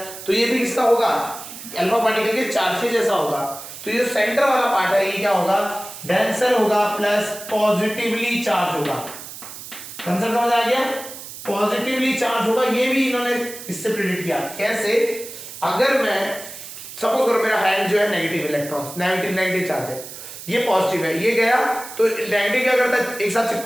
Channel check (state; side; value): noise; right; hiss, 12 dB below the sound